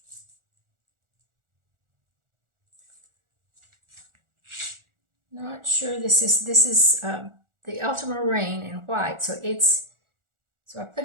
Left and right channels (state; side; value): late; left; 1.4 ms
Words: Not sure this is the ultramarine in white, so I put